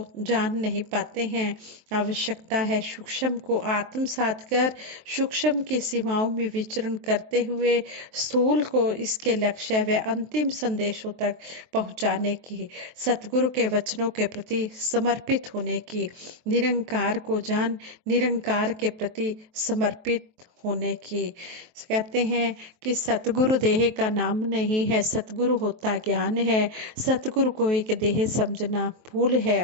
जान नहीं पाते हैं। आवश्यकता है सूक्ष्म को आत्मसात कर सूक्ष्म की सीमाओं में विचरण करते हुए स्थूल को इसके लक्ष्य व अंतिम संदेशों तक पहुंचाने की, सतगुरु के वचनों के प्रति समर्पित होने की, निरंकार को जान निरंकार के प्रति समर्पित होने की। कहते हैं कि सतगुरु देह का नाम नहीं है, सतगुरु होता ज्ञान है। सतगुरु को एक देह समझना भूल है,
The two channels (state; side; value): late; left; 23 ms